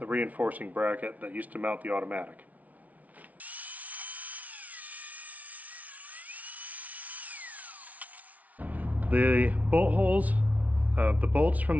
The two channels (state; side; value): late; left; 0.071 ms